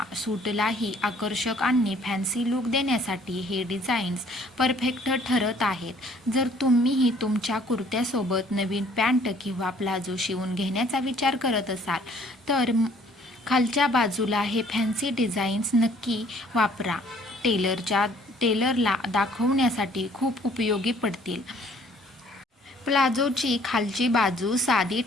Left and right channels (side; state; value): both; normal; correlation 0.59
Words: सूटलाही आकर्षक आणि फॅन्सी लुक देण्यासाठी हे डिझाईन्स परफेक्ट ठरत आहेत. जर तुम्हीही तुमच्या कुर्त्यासोबत नवीन पॅन्ट किंवा प्लाझो शिवून घेण्याचा विचार करत असाल, तर खालच्या बाजूला हे फॅन्सी डिझाईन्स नक्की वापरा. टेलरला दाखवण्यासाठी खूप उपयोगी पडतील. प्लाझोची खालची बाजू साधी